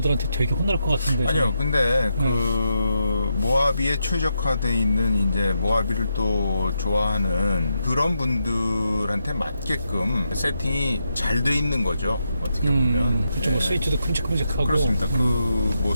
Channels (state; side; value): inverted; both; correlation -0.84